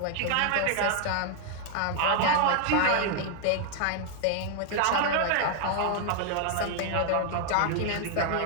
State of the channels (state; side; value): different; both; correlation 0.00